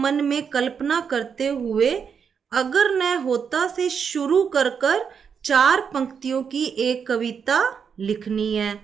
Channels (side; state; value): left; quieter; 6.7 dB